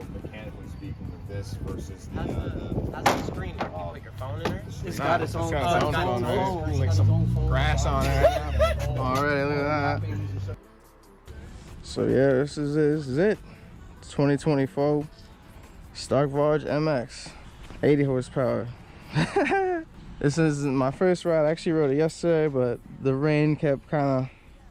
mechanically speaking, with this versus the? How's the screen? You put your phone in there? It's got its own phone. There's like some grass on it. Alright, look at that. So yeah, this is it. 2024 Stark Varg MX, 80 horsepower. This is my first ride. I actually rode it yesterday, but the rain kept kind of,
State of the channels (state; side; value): identical; both; correlation 1.00